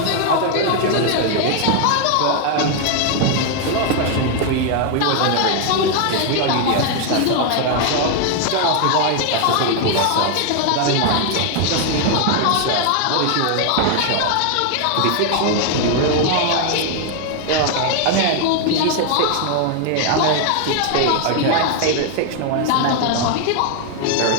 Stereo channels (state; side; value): different; both; correlation 0.00